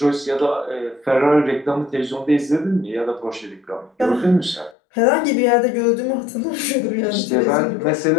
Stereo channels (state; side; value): drops out; right; at 4.8 s